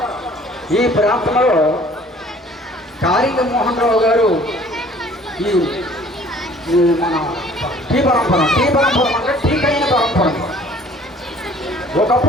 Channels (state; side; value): normal; both; correlation 0.53